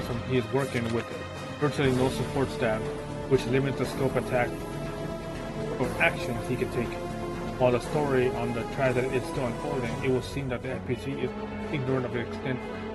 he is working with virtually no support staff, which limits the scope of actions he can take. While the story on the tragedy is still unfolding, it will seem that the FPC is ignorant of the extent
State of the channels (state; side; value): identical; both; correlation 1.00